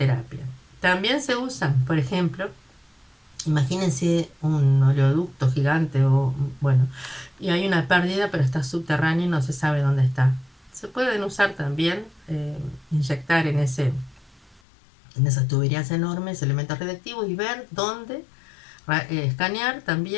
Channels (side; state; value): right; drops out; at 14.6 s